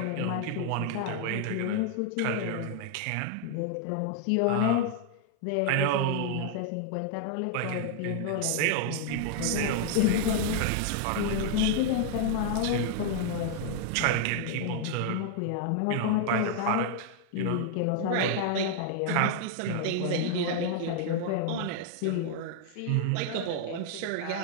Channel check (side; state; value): both; different; correlation 0.00